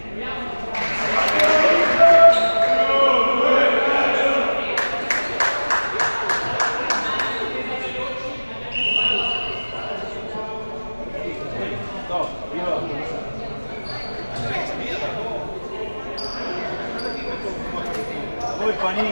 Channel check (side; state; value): both; inverted; correlation -1.00